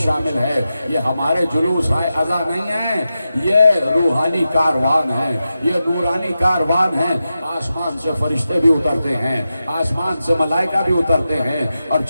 شامل ہے۔ یہ ہمارے جلوس عزا نہیں ہیں، یہ روحانی کاروان ہیں، یہ نورانی کاروان ہیں۔ آسمان سے فرشتے بھی اترتے ہیں، آسمان سے ملائکہ بھی اترتے ہیں، اور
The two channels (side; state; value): both; inverted; correlation -0.91